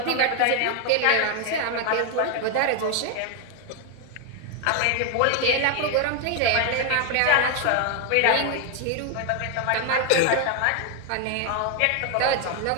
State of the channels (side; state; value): both; different; correlation 0.01